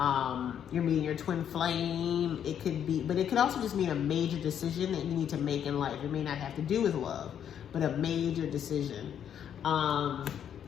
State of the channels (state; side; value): quieter; right; 9.1 dB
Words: you're meeting your twin flame. It could be, but it could also just mean a major decision that you need to make in life. It may not have to do with love, but a major decision.